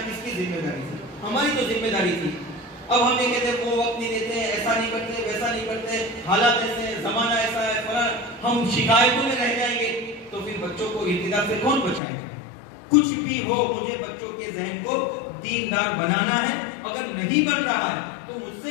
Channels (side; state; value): right; drops out; at 12.0 s